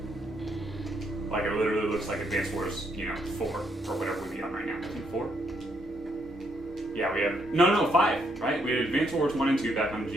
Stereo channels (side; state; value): both; normal; correlation 0.74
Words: Like, it literally looks like Advance Wars, you know, 4, or whatever we'd be on right now. I think 4? Yeah, we have... No, 5, right? We had Advance Wars 1 and 2 back on the